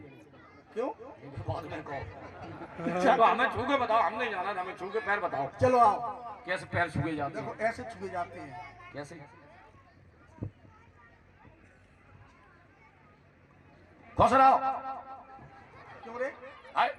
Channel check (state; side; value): identical; both; correlation 1.00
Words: क्यों? बाद में कहो। चलो हमें छू के बताओ, हम नहीं जाना, हमें छू के पैर बताओ। चलो आओ। कैसे पैर छुए जाते देखो हैं? ऐसे छुए जाते हैं। कैसे? खुश रहो। क्यों रे?